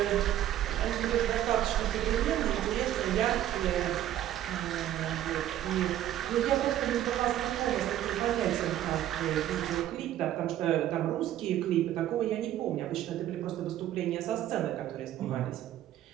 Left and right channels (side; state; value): left; quieter; 12.3 dB